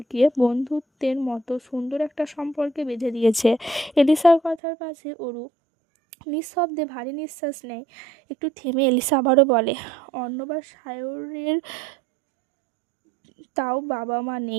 বন্ধুত্বের মতো সুন্দর একটা সম্পর্কে বেঁধে দিয়েছে। এলিসার কথার পাশে অরু নিঃশব্দে ভারী নিঃশ্বাস নেয়। একটু থেমে এলিসা আবারও বলে, অর্ণব আর সায়রের তাও বাবা মা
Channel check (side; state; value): left; drops out; at 4.6 s